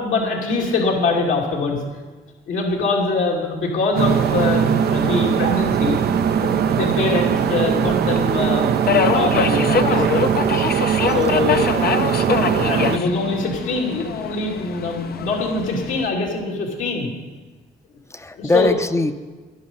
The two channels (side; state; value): both; normal; correlation 0.37